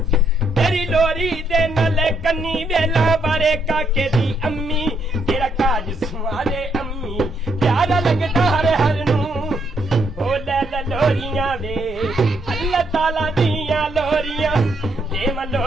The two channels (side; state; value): both; normal; correlation 0.74